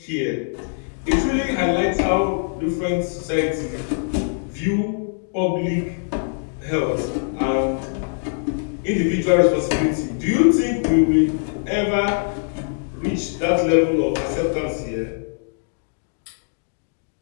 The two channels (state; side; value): silent; right; digital silence